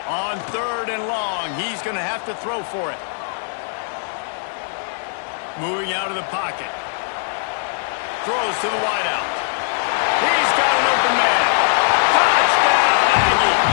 On 3rd and long, he's going to have to throw for it. Moving out of the pocket. Throws to the wideout. He's got an open man. Touchdown!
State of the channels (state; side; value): silent; right; digital silence